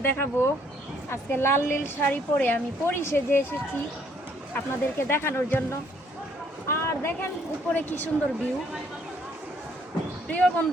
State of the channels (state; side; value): normal; both; correlation 0.65